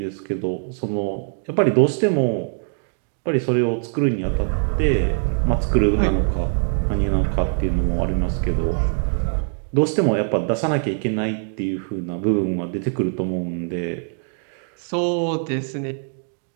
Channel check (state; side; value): silent; left; 63 dB below the other